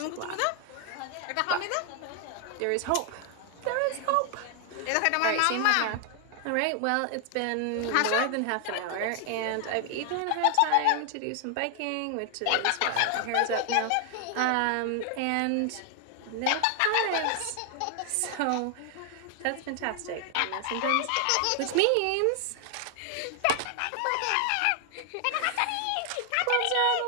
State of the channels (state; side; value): different; both; correlation 0.00